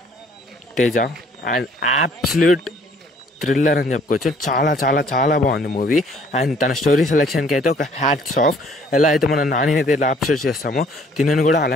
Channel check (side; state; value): both; normal; correlation 0.59